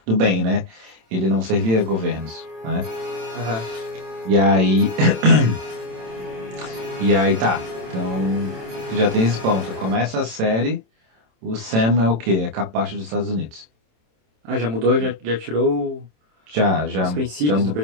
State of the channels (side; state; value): left; late; 27 ms